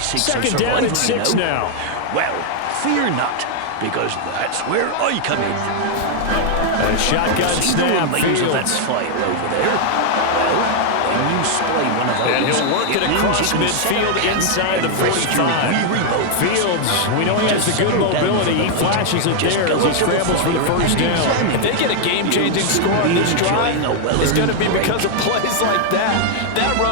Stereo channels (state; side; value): different; both; correlation 0.00